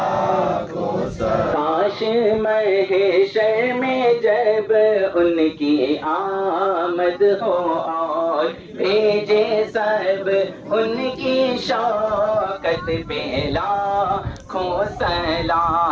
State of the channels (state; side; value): identical; both; correlation 1.00